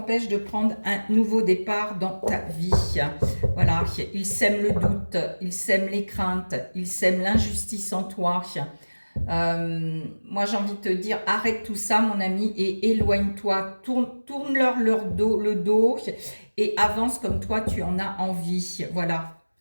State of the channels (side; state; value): both; inverted; correlation -1.00